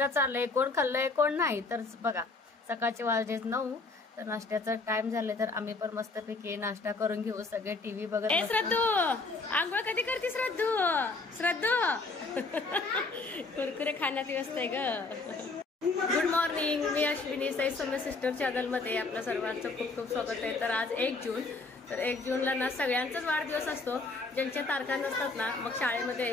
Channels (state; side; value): quieter; right; 3.6 dB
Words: चाललाय. कोण खाल्लंय कोण नाही तर बघा. सकाळचे वाजले 9 तर नाश्त्याचा टाइम झाले तर आम्ही पण मस्तपैकी नाश्ता करून घेऊ. सगळे टीव्ही बघत. श्रद्धू आंघोळ कधी करते? श्रद्धू कुरकुरे खाण्यात व्यस्त आहे ग. गुड मॉर्निंग, मी अश्विनी. साई सौम्य सिस्टर चॅनल मध्ये आपलं सर्वांचं खूप खूप स्वागत आहे. तर आज 1 जून. तर 1 जूनला ना सगळ्यांचाच वाढदिवस असतो. ज्यांच्या तारखा नसतात ना मग शाळेमध्ये